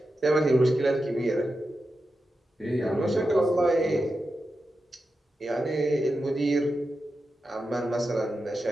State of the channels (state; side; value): normal; both; correlation 0.90